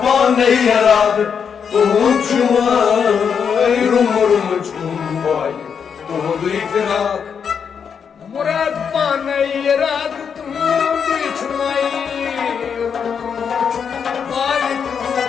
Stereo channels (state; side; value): quieter; right; 6.9 dB